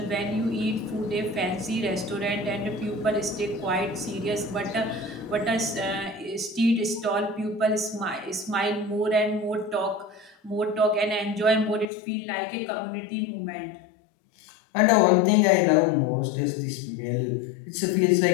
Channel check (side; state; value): right; drops out; at 11.9 s